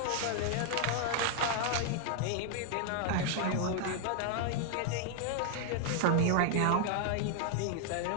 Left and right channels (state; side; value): different; both; correlation 0.00